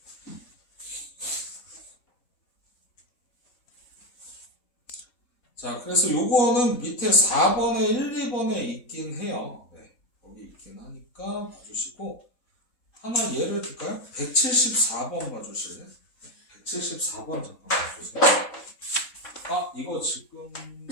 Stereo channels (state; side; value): late; right; 4.0 ms